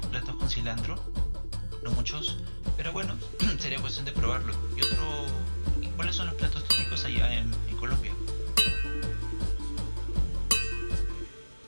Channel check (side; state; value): both; inverted; correlation -1.00